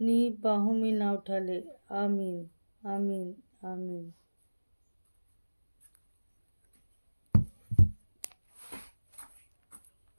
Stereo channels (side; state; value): both; inverted; correlation -1.00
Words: बाहों में ना उठा ले। आमीन, आमीन, आमीन।